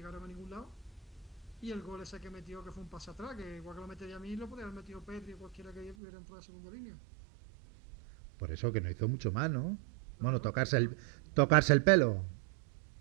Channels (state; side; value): drops out; left; at 6.0 s